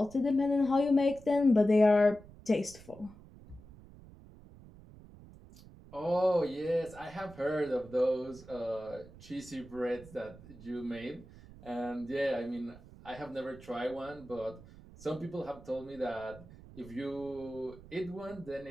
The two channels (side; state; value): right; noise; rumble, 19 dB below the sound